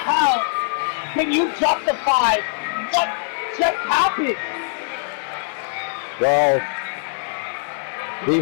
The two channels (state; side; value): silent; right; 62 dB below the other